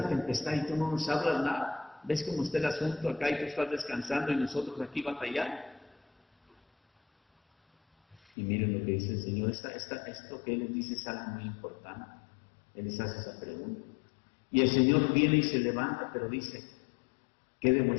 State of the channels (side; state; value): right; drops out; at 8.2 s